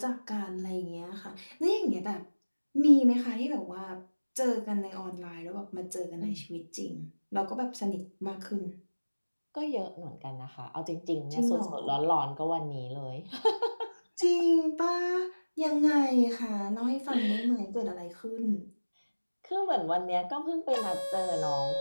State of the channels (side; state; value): both; inverted; correlation -1.00